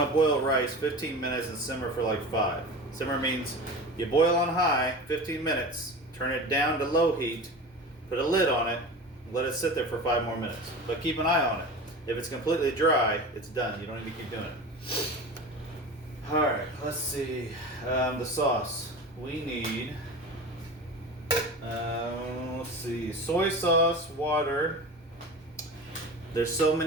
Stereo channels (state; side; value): normal; both; correlation 0.32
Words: to boil rice 15 minutes and simmer for like 5. Simmer means you boil on high 15 minutes, turn it down to low heat, put a lid on it, let it sit there for 5 more minutes. But keep an eye on it. If it's completely dry, it's done. You don't need to keep doing it. All right, let's see. The sauce. We need, let's see, soy sauce, water. There's so